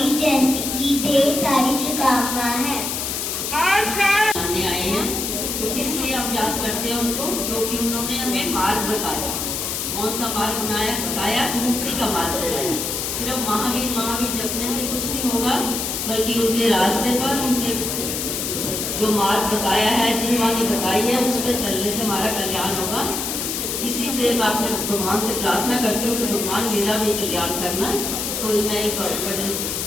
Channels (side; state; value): left; noise; hiss, 2 dB below the sound